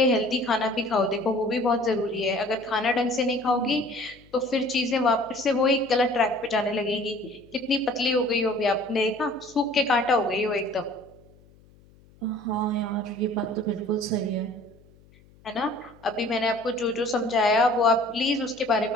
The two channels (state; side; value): noise; left; hum, 28 dB below the sound